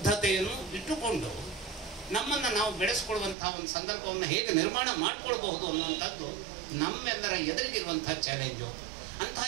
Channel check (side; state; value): left; drops out; at 3.4 s